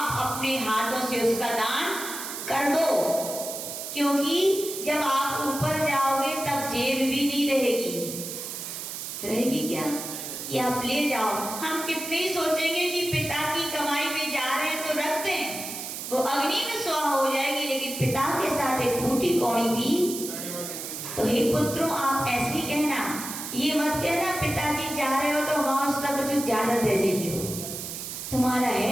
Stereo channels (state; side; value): noise; right; hiss, 7 dB below the sound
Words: अपने हाथों से उसका दान कर दो। क्योंकि जब आप ऊपर जाओगे तब जेब भी नहीं रहेगी क्या? कि आप ले जाओ। हम कितने ही सोचेंगे कि पिता की कमाई में जा रहे हैं तो रख दें, वो अग्नि में स्वाहा हो जाएगी, लेकिन पिता के साथ एक फूटी कौड़ी भी। तो हे पुत्रों, आप ऐसे ही कहना, ये मत कहना पिताजी जा रहे हो तो वहां उसका कुछ ज्यादा दे जाइए। तुम्हारा